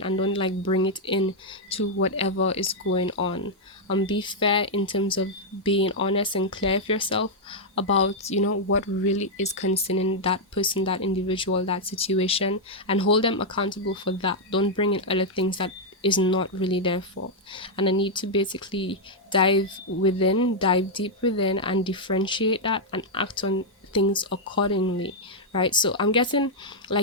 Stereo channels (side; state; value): both; normal; correlation -0.03